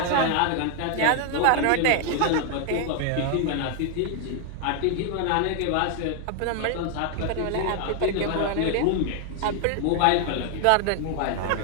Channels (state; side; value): different; both; correlation 0.00